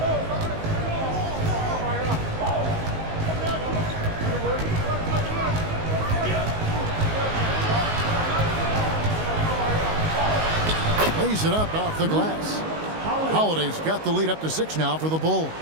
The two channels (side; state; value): left; late; 19 ms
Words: Lays it up off the glass. Holiday's got the lead up to 6 now for the Bulls.